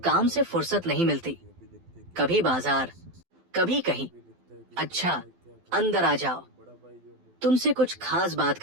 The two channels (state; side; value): late; left; 12 ms